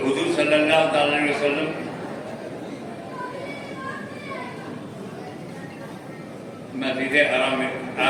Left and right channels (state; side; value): identical; both; correlation 1.00